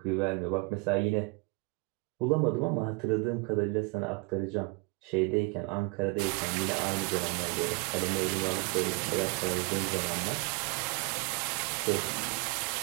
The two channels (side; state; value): left; quieter; 27.7 dB